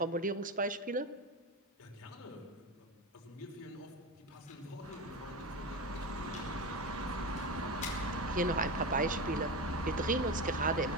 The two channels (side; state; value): both; normal; correlation 0.21